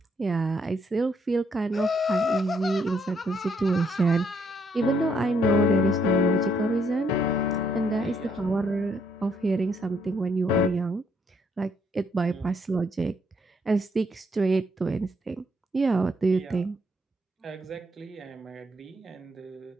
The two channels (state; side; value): normal; both; correlation 0.71